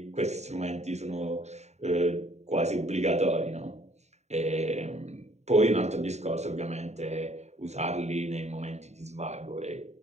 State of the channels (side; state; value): left; late; 0.32 ms